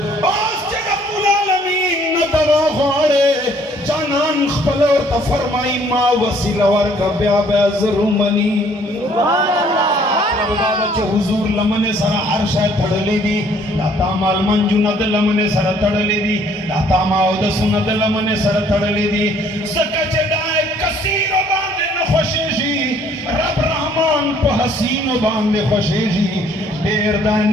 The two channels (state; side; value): normal; both; correlation 0.61